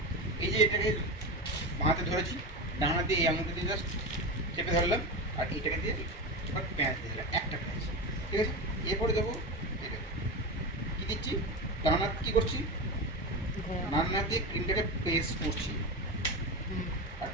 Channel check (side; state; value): both; normal; correlation 0.21